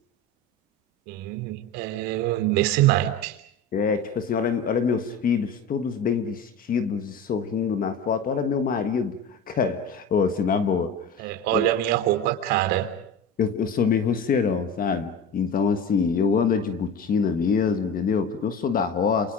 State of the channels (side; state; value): both; normal; correlation 0.29